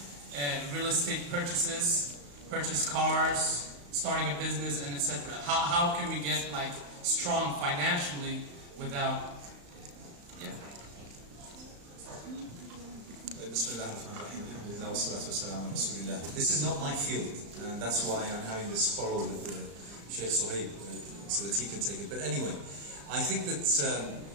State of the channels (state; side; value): late; left; 35 ms